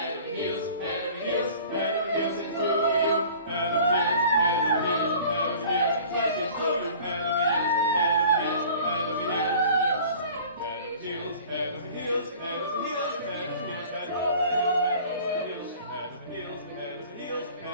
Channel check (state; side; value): inverted; both; correlation -0.46